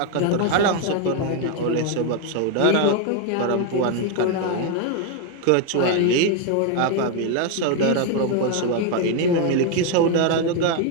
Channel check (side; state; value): both; different; correlation 0.01